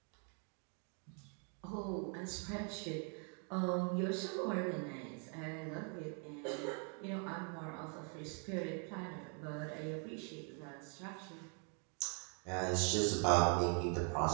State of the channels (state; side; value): quieter; left; 39.6 dB